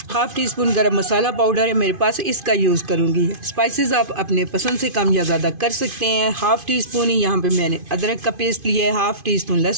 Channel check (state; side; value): late; left; 2.5 ms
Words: 1/2 टीस्पून गरम मसाला पाउडर है मेरे पास, इसका यूज़ करूँगी। स्पाइसेस आप अपने पसंद से कम या ज़्यादा कर सकते हैं। 1/2 टीस्पून ही यहाँ पे मैंने अदरक का पेस्ट लिया है, 1/2 टीस्पून